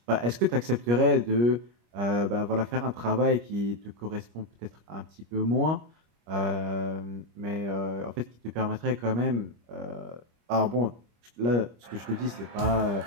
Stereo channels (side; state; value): left; late; 25 ms